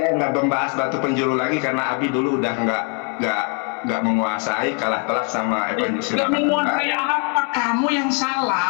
nggak membahas batu penjuru lagi karena Abi dulu udah nggak menguasai, kalah telak sama evangelis. Nggak menguasai apa? Kamu yang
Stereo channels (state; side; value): quieter; right; 35.9 dB